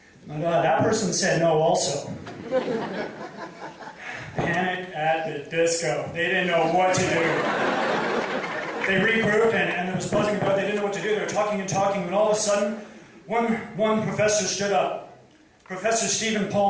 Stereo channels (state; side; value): identical; both; correlation 1.00